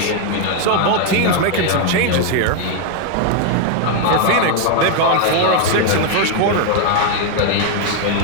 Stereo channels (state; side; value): different; both; correlation 0.00